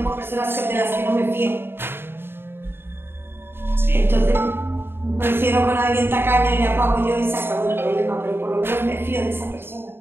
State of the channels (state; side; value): late; left; 0.11 ms